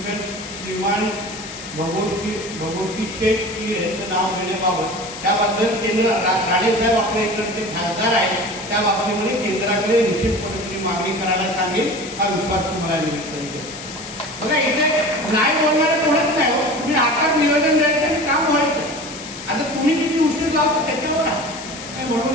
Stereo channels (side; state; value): left; noise; hiss, 12 dB below the sound